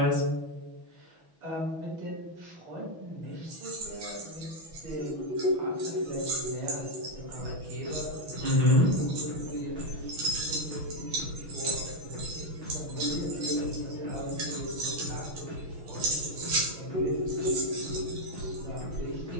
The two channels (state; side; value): late; left; 6.2 ms